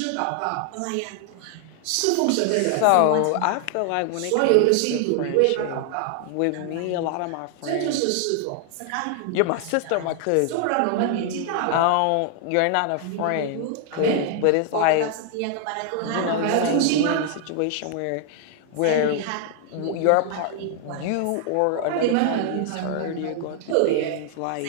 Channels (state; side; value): different; both; correlation 0.00